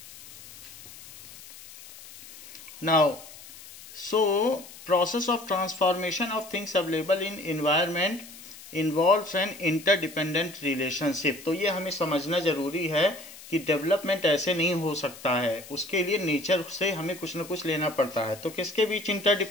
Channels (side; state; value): left; noise; hiss, 17 dB below the sound